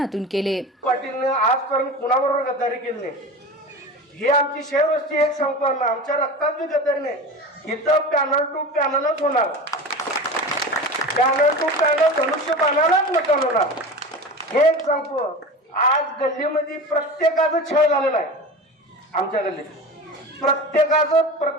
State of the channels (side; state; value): both; normal; correlation 0.31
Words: केले। पाटीलने आजपर्यंत कुणाबरोबर गद्दारी केली नाही, ही आमची शेवटची एक संकल्पना, आमच्या रक्तात बी गद्दारी नाही। इथं पॅनल टू पॅनलच होणार, पॅनल टू पॅनल धनुष्यबाणालाच मतदान होणार, हे एक सांगतो। आज गल्लीमध्ये प्रत्येकाचं छळ झालेला आहे, आमच्या गल्लीत